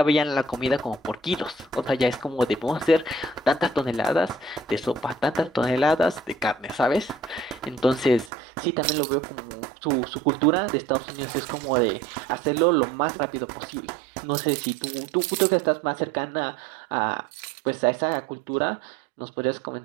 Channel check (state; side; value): drops out; left; at 8.3 s